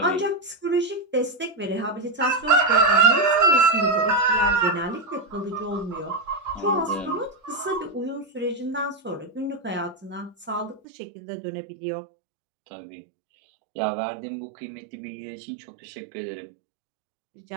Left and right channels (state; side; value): drops out; left; at 10.8 s